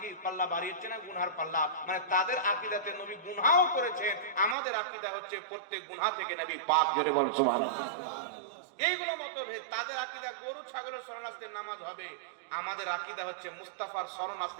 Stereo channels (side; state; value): left; drops out; at 4.5 s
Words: পাল্লা ভারী হচ্ছে না গুনহার পাল্লা। মানে তাদের আকীদাতে নবী গুনহাও করেছেন, আমাদের আকীদা হচ্ছে প্রত্যেক গুনহা থেকে নবী পাক। জোরে বল সুবহানাল্লাহ। এইগুলো মতভেদ। তাদের আকীদা গরু ছাগলের শরণার্থীর নামাজ হবে, আমাদের আকীদা হচ্ছে মুস্তাফার